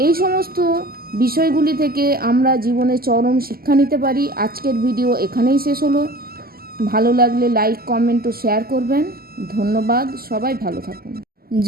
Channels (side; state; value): left; late; 0.43 ms